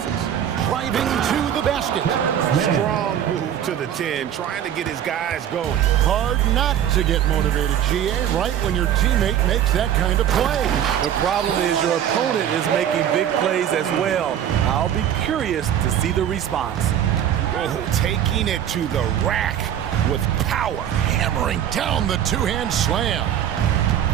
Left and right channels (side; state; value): left; quieter; 10.1 dB